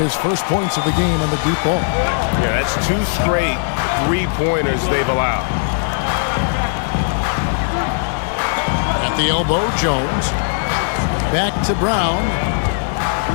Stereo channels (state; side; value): silent; right; digital silence